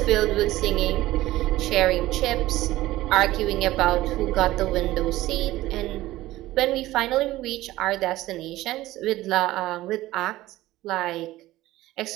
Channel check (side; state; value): left; quieter; 16.6 dB